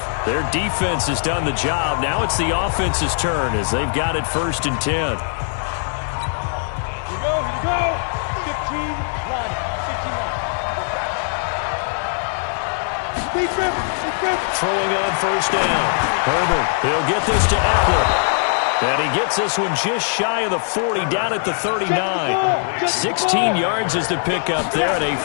Their defense has done the job. Now it's the offense's turn as they've got it 1st and 10. Here you go, 15 line, 15 line. Throwing on 1st down. Herbert, he'll get this to Eckler. And he gets this one just shy of the 40, down at the 39. 16 yards is the pickup there, and a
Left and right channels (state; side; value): silent; right; 65 dB below the other